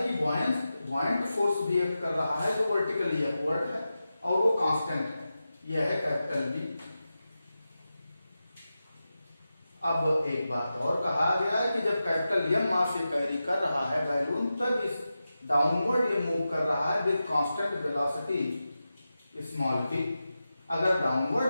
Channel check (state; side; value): inverted; both; correlation -0.92